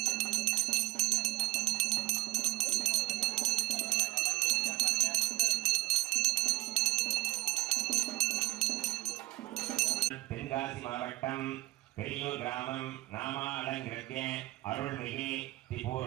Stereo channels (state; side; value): quieter; left; 18.9 dB